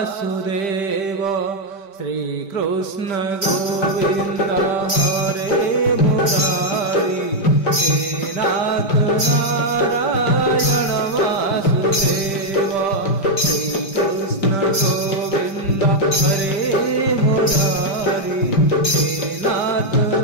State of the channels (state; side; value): late; right; 5.1 ms